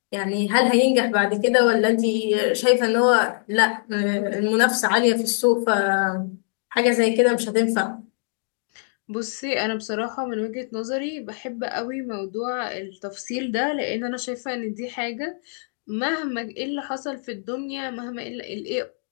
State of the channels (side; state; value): right; silent; 63 dB below the other